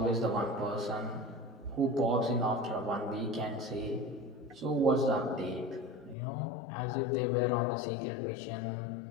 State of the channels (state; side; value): drops out; right; at 6.2 s